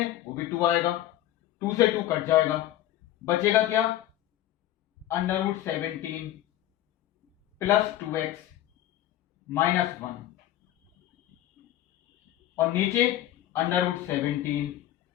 वो भी 2 आएगा, 2 से 2 कट जाएगा, बचेगा क्या, √17 प्लस 2x माइनस 1, और नीचे √17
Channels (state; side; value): quieter; right; 13.5 dB